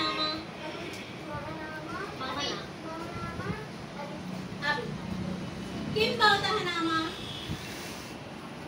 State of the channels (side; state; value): both; identical; correlation 1.00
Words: మమ నామ. అభి. కిం భవతః నామ?